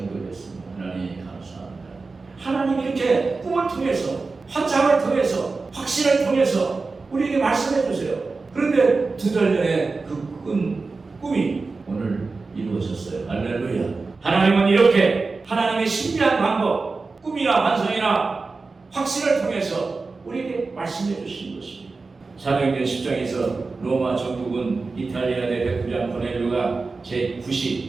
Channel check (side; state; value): left; quieter; 4.0 dB